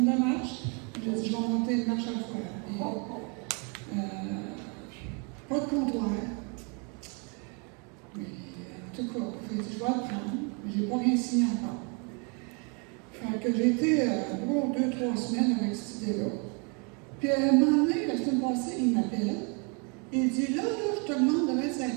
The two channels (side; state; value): left; quieter; 34.9 dB